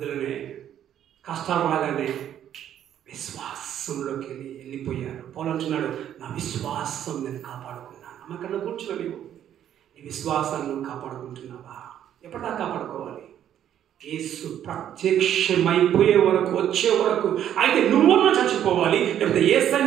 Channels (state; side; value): quieter; left; 10.4 dB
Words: కష్టాలు రాగానే విశ్వాసంలోకి వెళ్ళిపోయారు. పౌలు అంటున్నాడు, నా విశ్వాసం నేను కాపాడుకున్నాను. అమ్మకన్నా కూర్చోని నీ విశ్వాసాన్ని కాపాడుకుంటున్నావా? ఎప్పటిదాకా కాపాడుకోవాలి? యేసు ప్రత్యక్షమైపోయే వరకు, వచ్చే వరకు. అయితే నువ్వున్నా చచ్చిపోవాలి, లేకపోతే